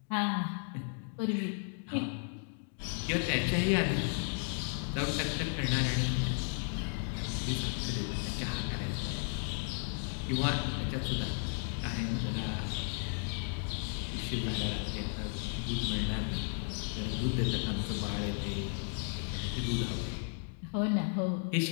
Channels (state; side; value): silent; right; 55 dB below the other